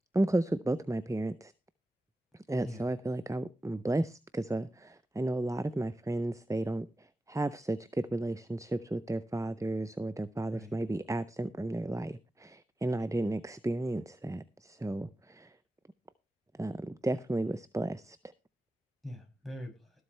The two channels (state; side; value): normal; both; correlation 0.94